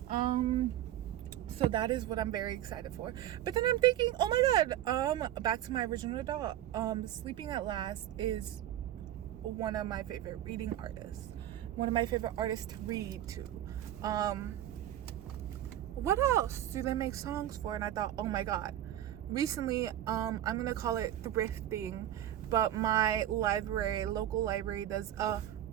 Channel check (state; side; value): quieter; left; 12.2 dB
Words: So that is what I'm very excited for. But then I'm thinking, oh my god, back to my original thought. Sleeping at Last is one of my favorite reading artists. One of my favorite artists to read to. What else do they make songs for? And I thought, oh my god. Recently, I'm gonna call it thrifting, but my local library does a